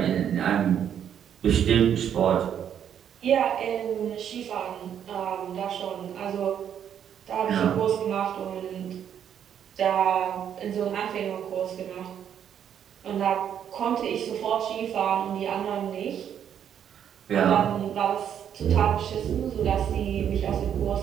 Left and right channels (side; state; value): left; quieter; 9.1 dB